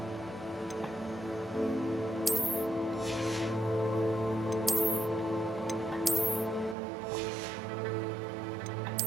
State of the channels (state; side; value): drops out; left; at 6.8 s